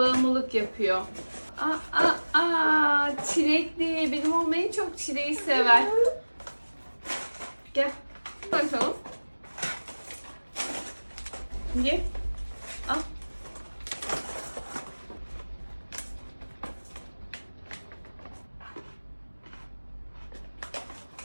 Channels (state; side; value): inverted; both; correlation -1.00